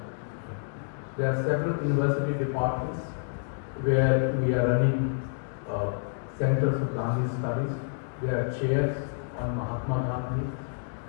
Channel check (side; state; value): right; silent; digital silence